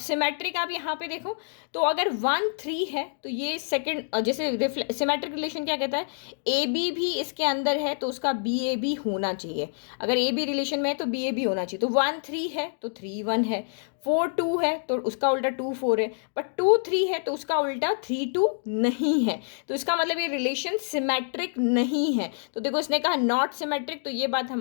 आप यहाँ पे देखो, तो अगर 1 3 है तो ये सेकंड, जैसे सिमेट्रिक रिलेशन क्या कहता है, ए बी भी इसके अंदर है तो उसका बी ए बी होना चाहिए। अगर ए बी रिलेशन में है तो बी ए बी होना चाहिए। तो 1 3 है तो 3 1 है, 4 2 है तो उसका उल्टा 2 4 है, बट 2 3 है तो उसका उल्टा 3 2 नहीं है। तो इसका मतलब ये रिलेशन सिमेट्रिक नहीं है। तो देखो, इसने कहा नॉट सिमेट्रिक, तो ये बात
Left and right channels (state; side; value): silent; right; digital silence